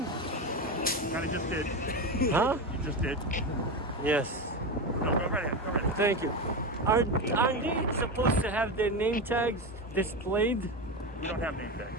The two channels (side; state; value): both; normal; correlation 0.18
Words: Kind of just did. Huh? You just did. Yes. No, go right ahead. Go right ahead. Thank you. Are they supposed to have their name tags displayed? We don't have name